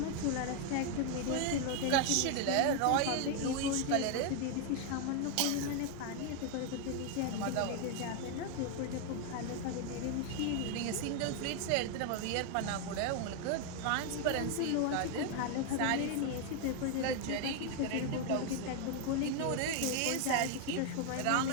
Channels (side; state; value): both; different; correlation 0.01